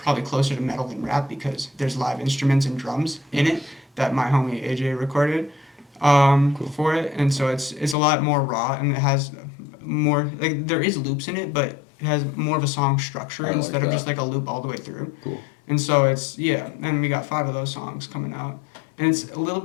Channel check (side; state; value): right; drops out; at 8.0 s